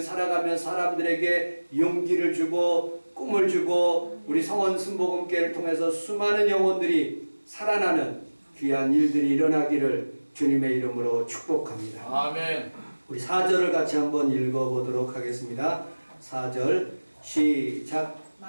살아가며 사람들에게 용기를 주고 꿈을 주고 우리 성원 순복음교회를 통해서 수많은 영혼들이 살아나는 귀한 일들이 일어나기를 주님의 이름으로 축복합니다. 아멘. 우리 4절을 같이 한번 읽어보도록 하겠습니다. 4절 시작.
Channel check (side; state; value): both; inverted; correlation -1.00